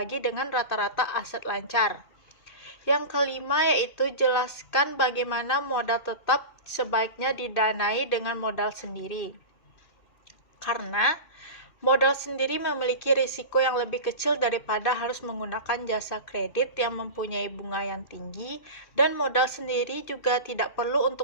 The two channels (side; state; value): right; late; 2.6 ms